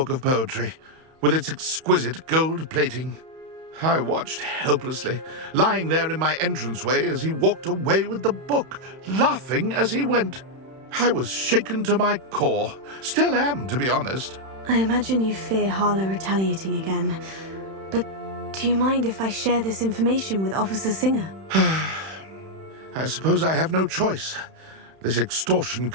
of poetry, with its exquisite gold plating. I watched helplessly, lying there in my entranceway as he walked away with the book, laughing as he went. I was shaken to my core. Still am, to be honest. I imagine you fear Harlow retaliating again. But do you mind if I share this information with Officer Singer? I suppose I have no choice. This extortion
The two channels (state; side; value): late; left; 31 ms